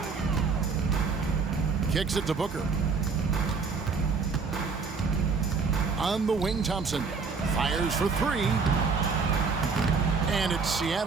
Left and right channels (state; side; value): quieter; left; 4.9 dB